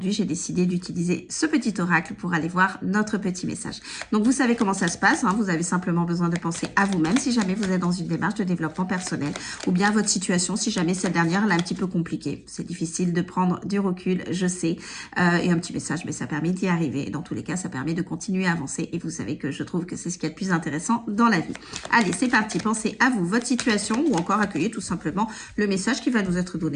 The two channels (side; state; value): both; identical; correlation 1.00